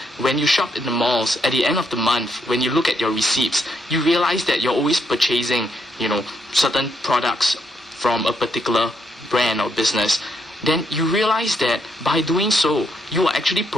when you shop in the malls, at the end of the month, when you look at your receipts, you realize that you're always purchasing, certain products from a particular brand or business. Then you realize that by doing so, you are actually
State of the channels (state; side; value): normal; both; correlation 0.76